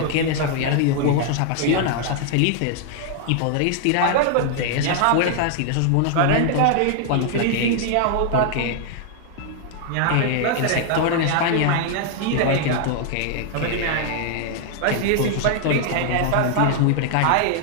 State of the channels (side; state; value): both; different; correlation 0.00